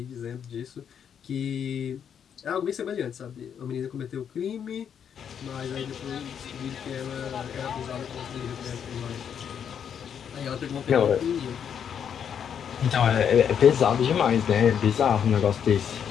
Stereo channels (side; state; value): right; quieter; 8.1 dB